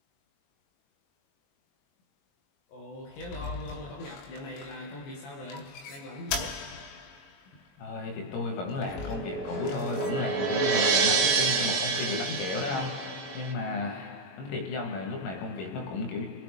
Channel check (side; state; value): right; late; 22 ms